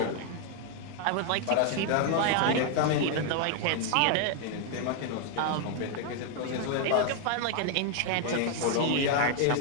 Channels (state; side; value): different; both; correlation 0.00